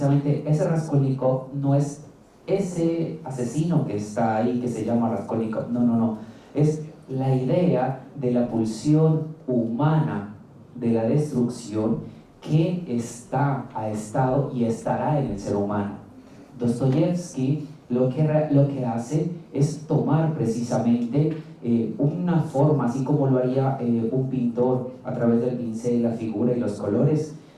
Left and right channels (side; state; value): both; identical; correlation 1.00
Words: ese Raskolnikov no es ese asesino que está ahí, que se llama Raskolnikov, no, es la idea de la pulsión humana de la destrucción que ha estado y estará en el ser humano. Dostoyevsky lo que hace es tomar precisamente una forma, así como lo haría un pintor a través del pincel, la figura y los colores,